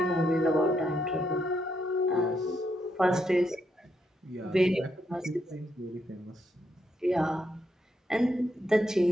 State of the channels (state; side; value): normal; both; correlation 0.79